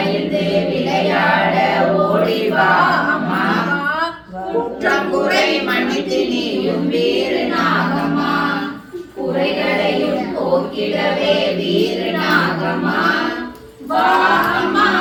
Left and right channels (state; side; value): identical; both; correlation 1.00